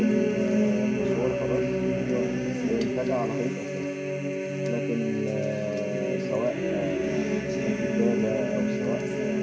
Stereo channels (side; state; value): both; identical; correlation 1.00